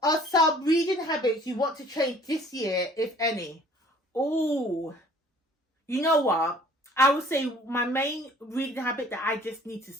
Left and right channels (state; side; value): normal; both; correlation 0.53